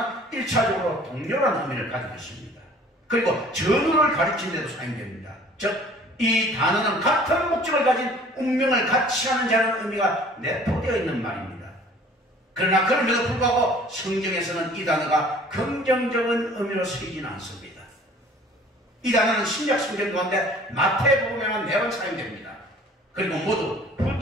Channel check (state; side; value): normal; both; correlation 0.51